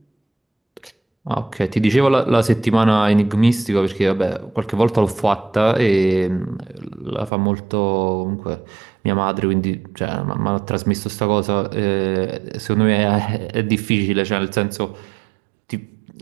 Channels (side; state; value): left; drops out; at 7.3 s